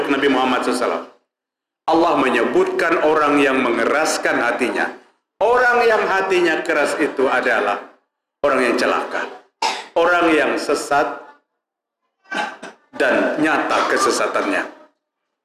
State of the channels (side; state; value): both; identical; correlation 1.00